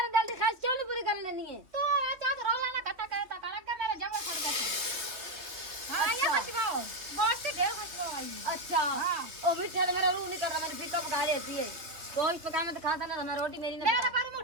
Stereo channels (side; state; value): left; late; 3.2 ms